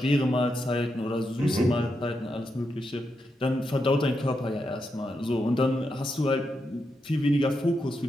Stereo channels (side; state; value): both; normal; correlation 0.84